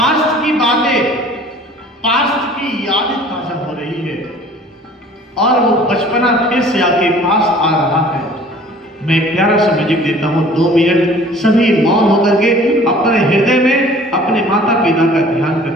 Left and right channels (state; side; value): normal; both; correlation 0.50